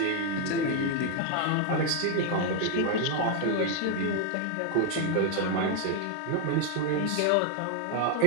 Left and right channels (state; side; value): different; both; correlation 0.00